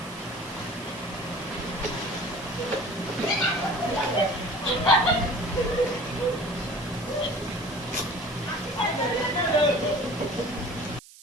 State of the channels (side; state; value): right; noise; hiss, 20 dB below the sound